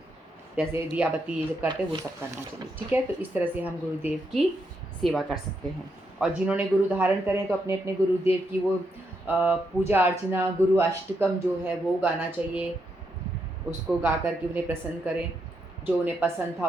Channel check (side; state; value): both; normal; correlation 0.80